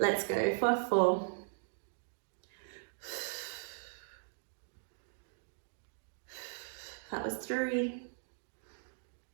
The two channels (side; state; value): left; silent; digital silence